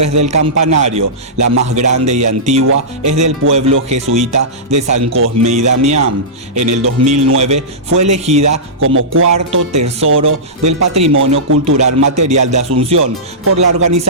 del campanario. La más grande y antigua es del pueblo jesuita de San Cosme y Damián. En el 2009 fue elegida como cuarto tesoro del Patrimonio Cultural Material de Asunción por la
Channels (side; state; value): both; normal; correlation -0.18